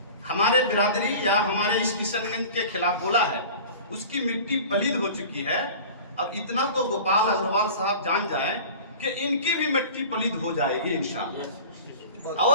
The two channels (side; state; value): both; inverted; correlation -0.39